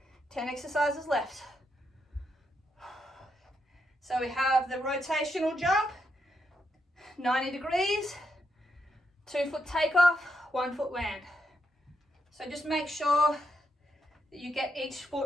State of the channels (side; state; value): both; normal; correlation 0.81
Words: 10 exercises left. So we have the rotational jump, 90 degrees, 2 foot takeoff, 1 foot land. So just make sure that you get each